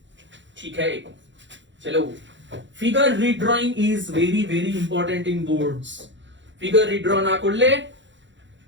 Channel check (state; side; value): late; left; 0.54 ms